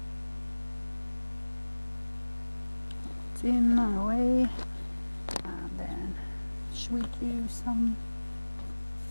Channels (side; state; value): both; inverted; correlation -1.00